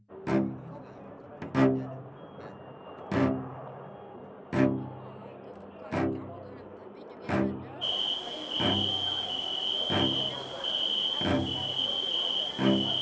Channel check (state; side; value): identical; both; correlation 1.00